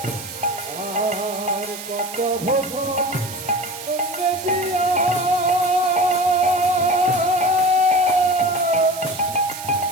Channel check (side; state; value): right; noise; hiss, 11 dB below the sound